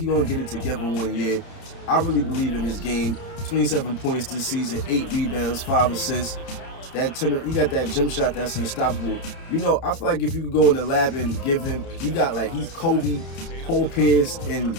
going to get it together one year. I really believe in his game. 27 points this season, 8 rebounds, 5 assists. He got that jump shot that's unstoppable. You know, I feel like if you could go in the lab and give him, he's Kobe, Paul Pierce, and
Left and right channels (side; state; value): right; late; 30 ms